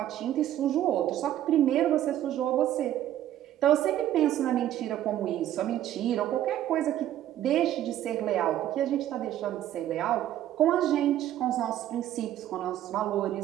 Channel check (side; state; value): left; quieter; 12.2 dB